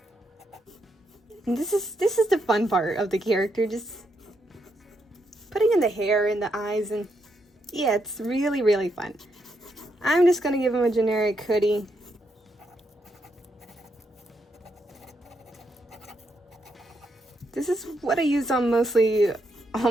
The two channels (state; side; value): normal; both; correlation 0.80